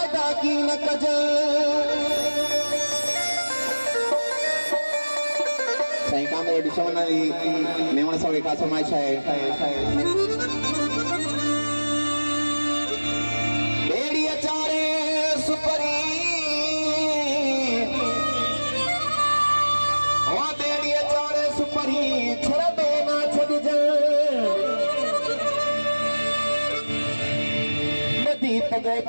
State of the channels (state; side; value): inverted; both; correlation -1.00